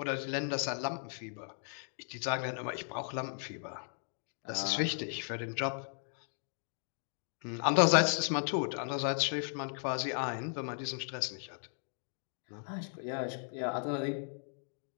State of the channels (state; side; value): silent; right; 54 dB below the other